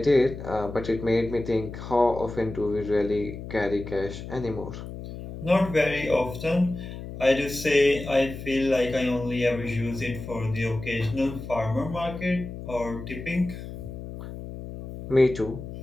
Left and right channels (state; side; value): noise; left; hum, 10 dB below the sound